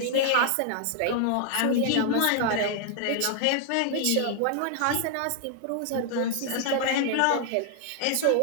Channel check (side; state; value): both; different; correlation 0.00